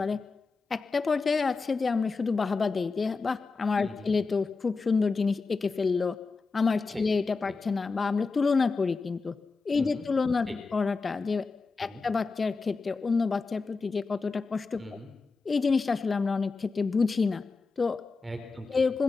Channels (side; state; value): right; quieter; 4.3 dB